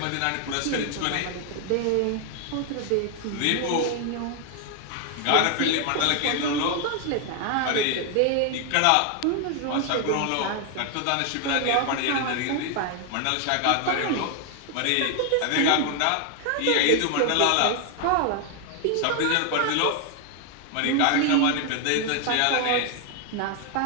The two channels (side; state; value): both; different; correlation 0.00